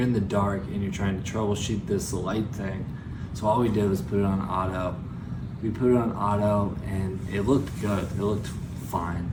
in the dark and you're trying to troubleshoot this light thing. So all we did was put it on auto. We put it on auto, and it looked good. It looked fine,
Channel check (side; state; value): both; identical; correlation 1.00